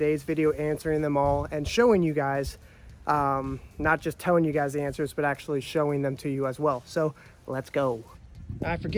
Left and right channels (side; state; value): both; identical; correlation 1.00